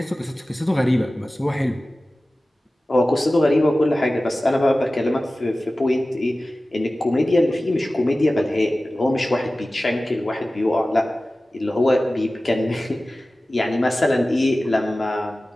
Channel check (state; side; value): normal; both; correlation 0.96